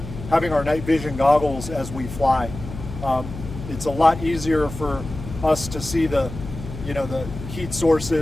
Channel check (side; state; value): left; noise; hum, 11 dB below the sound